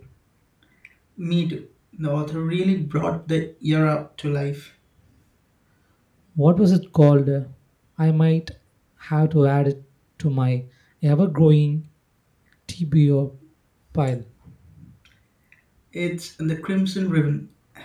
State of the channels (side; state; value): both; identical; correlation 1.00